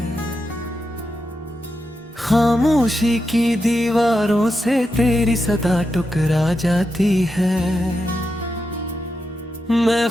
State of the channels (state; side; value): normal; both; correlation 0.87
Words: खामोशी की दीवारों से तेरी सदा टुकरा जाती है। मैं